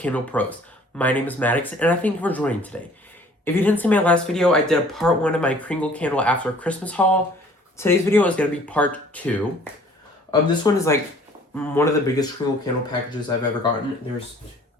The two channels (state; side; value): normal; both; correlation 0.54